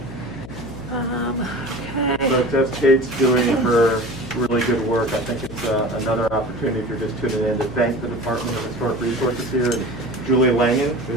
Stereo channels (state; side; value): noise; left; hum, 13 dB below the sound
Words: So that's Kate's doing her really good work. I think it's another opportunity, if you're just tuning in, to thank the Department of Historic Resources here, and Julie Langen,